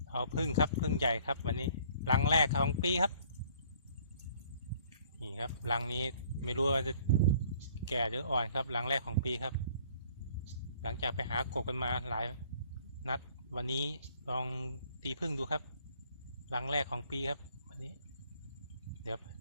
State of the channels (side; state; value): both; inverted; correlation -0.58